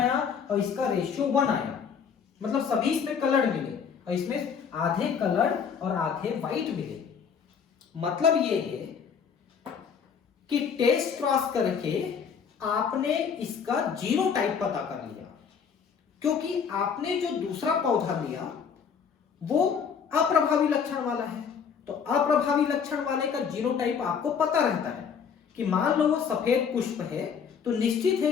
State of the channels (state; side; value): quieter; right; 6.7 dB